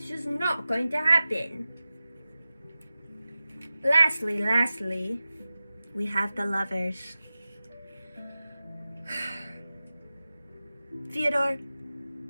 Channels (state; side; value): inverted; both; correlation -0.95